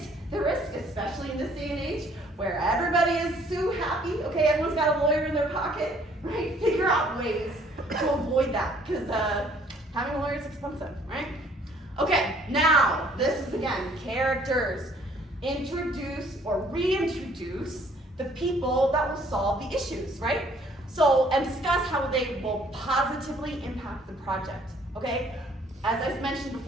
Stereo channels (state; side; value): normal; both; correlation 0.60